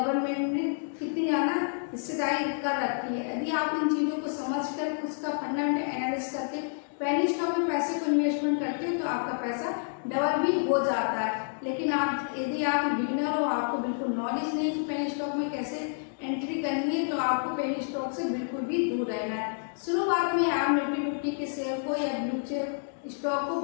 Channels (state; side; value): silent; right; digital silence